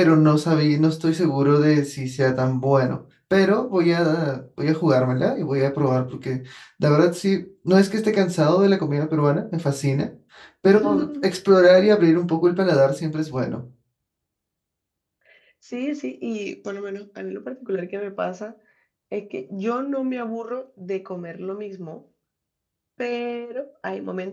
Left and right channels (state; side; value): identical; both; correlation 1.00